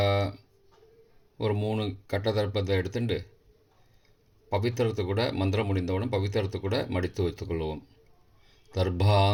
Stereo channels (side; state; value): both; identical; correlation 1.00